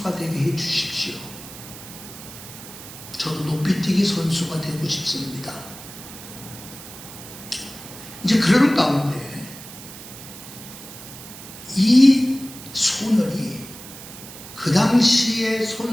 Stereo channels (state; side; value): noise; right; hiss, 14 dB below the sound